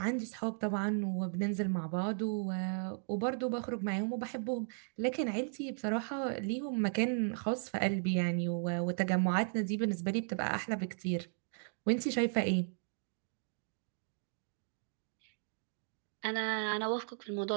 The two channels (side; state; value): left; silent; digital silence